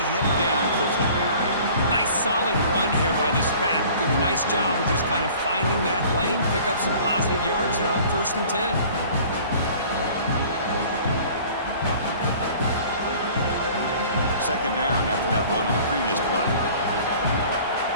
him down quickly. Nice solid run here by this back. Did a nice job of just kind of finding that lane, pick up some positive yards there on 1st and 10. Second down after that run on the previous play.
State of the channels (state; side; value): inverted; both; correlation -0.48